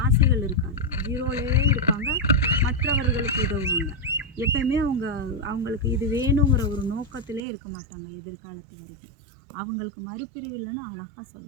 ஆசைகள் இருக்காது, ஜீரோலேயே இருப்பாங்க. மற்றவர்களுக்கு உதவுவாங்க. எப்பயுமே அவங்களுக்கு இது வேணுங்கிற ஒரு நோக்கத்திலே இருக்க மாட்டாங்க எதிர்காலத்து வரைக்கும். அவங்களுக்கு மறுபிறவில்லைன்னு அழகாக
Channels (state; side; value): drops out; left; at 7.5 s